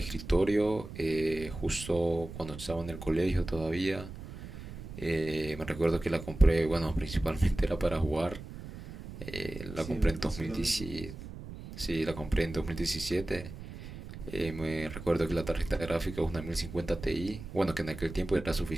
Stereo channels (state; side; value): noise; right; rumble, 12 dB below the sound